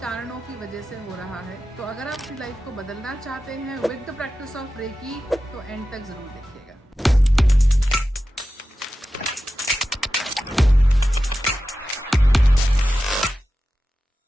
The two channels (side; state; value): both; normal; correlation 0.93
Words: कारणों की वजह से हो रहा है। तो अगर आप अपनी लाइफ को बदलना चाहते हैं with the practice of reiki, तो एंड तक ज़रूर देखिएगा।